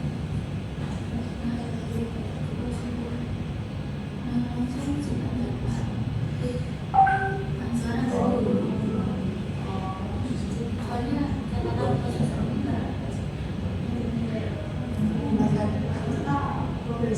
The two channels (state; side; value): identical; both; correlation 1.00